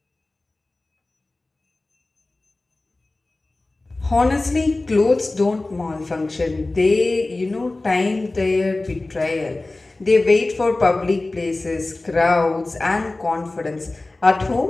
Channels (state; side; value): quieter; right; 3.0 dB